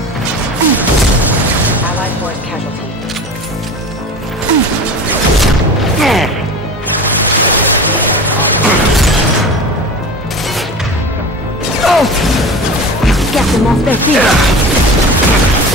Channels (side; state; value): both; normal; correlation 0.33